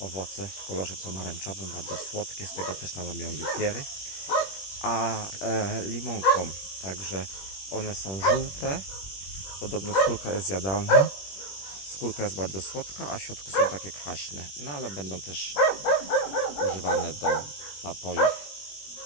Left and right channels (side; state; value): right; late; 21 ms